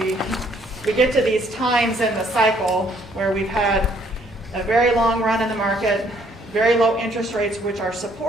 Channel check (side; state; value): both; normal; correlation 0.65